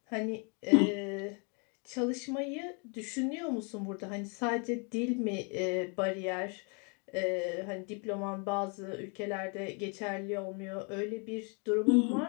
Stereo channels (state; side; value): quieter; right; 36.5 dB